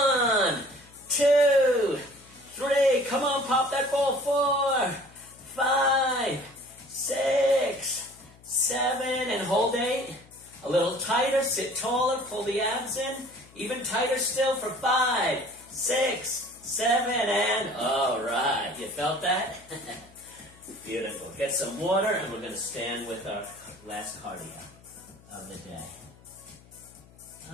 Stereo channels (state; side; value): noise; left; hum, 25 dB below the sound